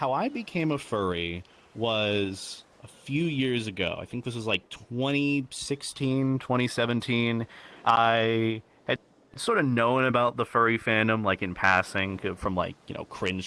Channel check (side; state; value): both; identical; correlation 1.00